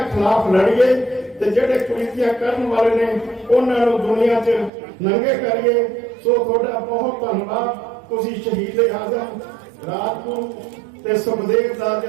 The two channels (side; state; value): left; drops out; at 4.7 s